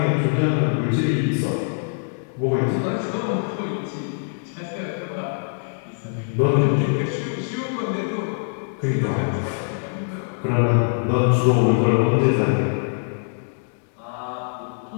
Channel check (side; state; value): right; silent; digital silence